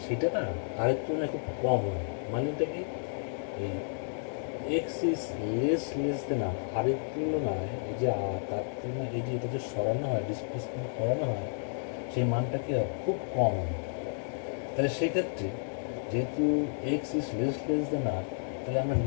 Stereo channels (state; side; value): silent; right; digital silence